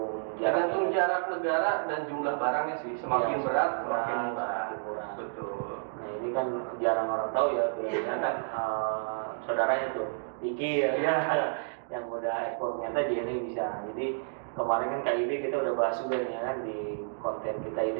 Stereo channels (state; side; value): silent; left; digital silence